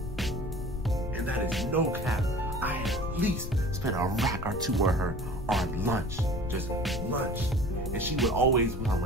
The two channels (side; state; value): left; noise; rumble, 6 dB below the sound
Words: And that is no cap. I at least spend a rack or 2 on her on lunch. Just lunch. And she would always want